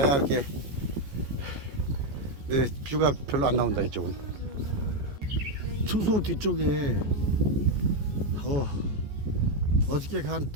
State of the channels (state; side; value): late; left; 14 ms